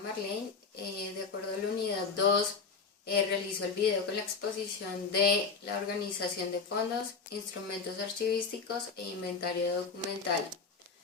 de acuerdo a la unidad 2, realizó el video con la exposición de la organización de fondos, instrumentos archivísticos e inventario documental.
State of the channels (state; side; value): quieter; right; 5.1 dB